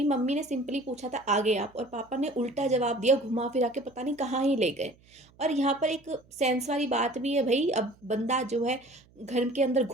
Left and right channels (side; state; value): right; noise; hum, 29 dB below the sound